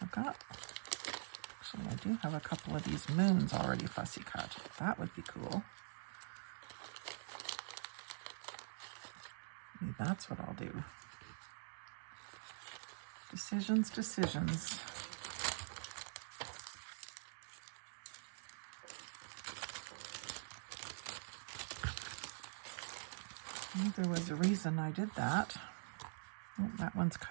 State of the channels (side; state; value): left; silent; digital silence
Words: actually I do have a couple of these moons already fussy cut. That would be cool. Maybe that's what I'll do. Decisions. I think there was a reason I did that. Oh, that one's